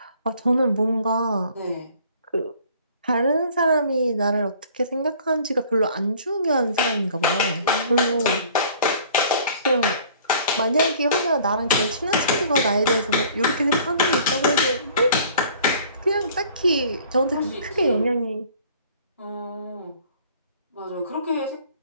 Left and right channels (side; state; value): both; inverted; correlation -0.54